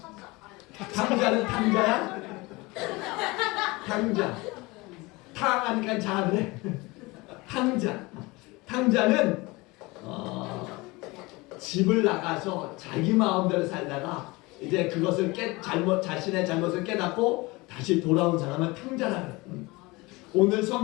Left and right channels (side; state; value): right; quieter; 23.3 dB